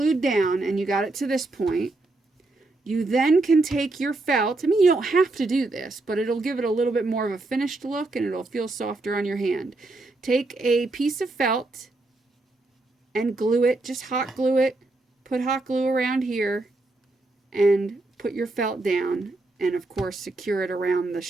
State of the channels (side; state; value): left; quieter; 3.0 dB